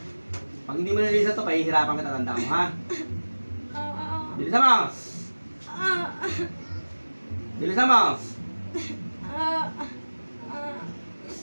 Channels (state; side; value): inverted; both; correlation -1.00